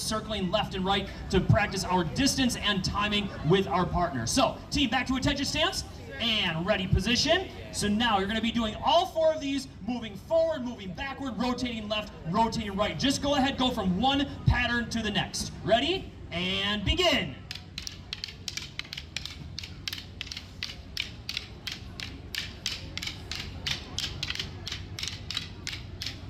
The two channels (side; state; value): both; identical; correlation 1.00